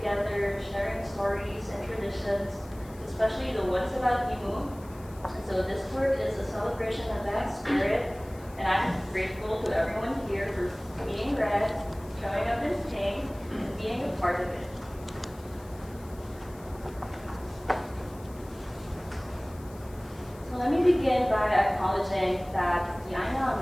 sharing stories and traditions, especially the ones about limu. And so this work is a celebration of that spirit, and I'm grateful to everyone here for being red, showing up in pink, and being a part of it. So let me begin by acknowledging that the aina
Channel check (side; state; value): left; noise; hiss, 24 dB below the sound